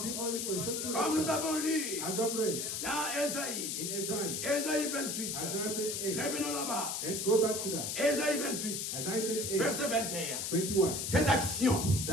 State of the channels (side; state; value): left; noise; hiss, 2 dB below the sound